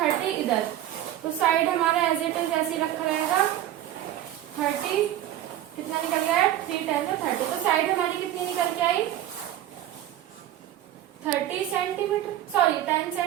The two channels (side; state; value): left; quieter; 12.6 dB